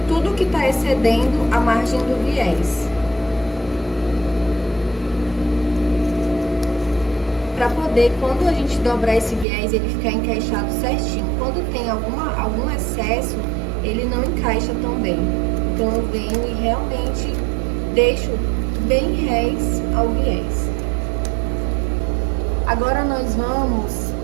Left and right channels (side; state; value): left; drops out; at 9.5 s